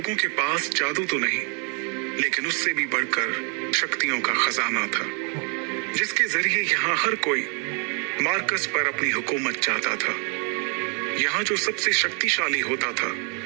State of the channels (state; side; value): quieter; left; 37.7 dB